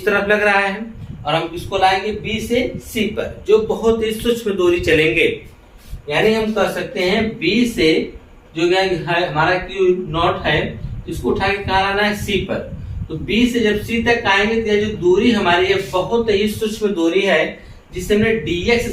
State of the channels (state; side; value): identical; both; correlation 1.00